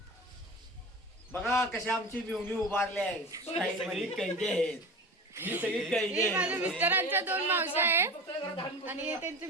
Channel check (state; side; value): normal; both; correlation 0.32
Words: बघा कशा आमची मिवणी उभारले आहे. सगळी कैदी आहेत. ही सगळी कैदी हे माझ्या मिस्टरांच्या 2 मावशी आहेत आणि